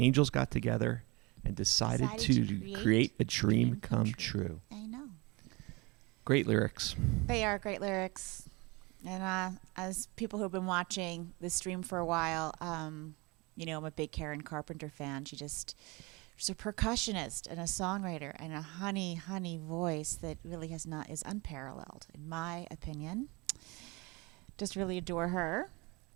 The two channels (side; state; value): left; quieter; 26.3 dB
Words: got together and decided to create a dream come true. I know. Great lyrics. They are great lyrics. And as people who've been watching this stream for a while, you know, I'm a big Karen Carpenter fan. She's a percussionist and a songwriter and a honey voice that really is unparalleled, in my opinion. Just really adore her.